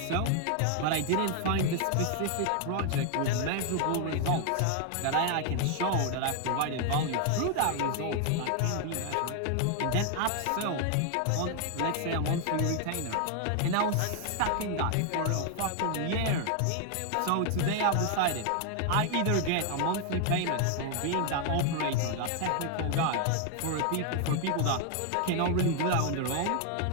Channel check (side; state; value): both; different; correlation 0.00